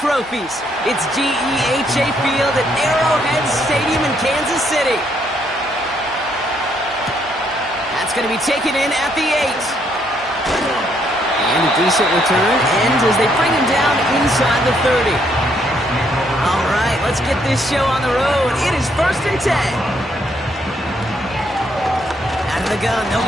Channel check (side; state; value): both; normal; correlation 0.72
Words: It's GEHA Field at Arrowhead Stadium in Kansas City. That's going to be taken in at the 8. And a decent return ends as they bring him down inside the 30. All right, let's get this show on the road. It is 1st and 10. Out of the gun, they'll